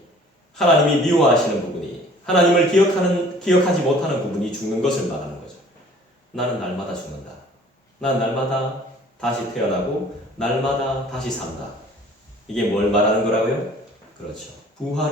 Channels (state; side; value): normal; both; correlation 0.52